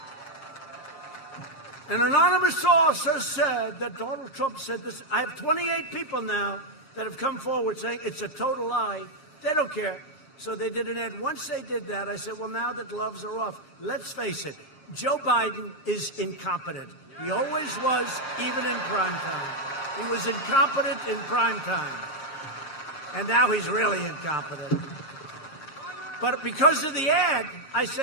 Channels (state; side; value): late; right; 7.4 ms